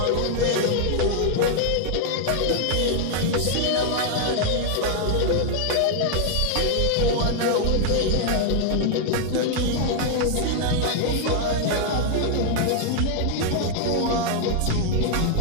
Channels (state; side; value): different; both; correlation 0.00